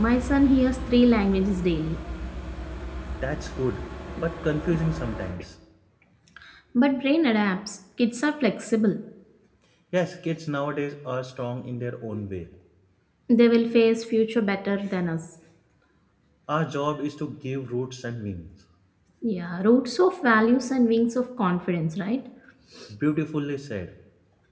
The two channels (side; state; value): both; identical; correlation 1.00